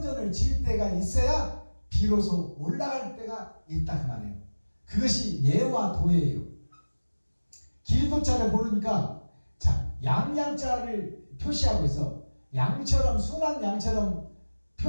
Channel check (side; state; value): both; inverted; correlation -1.00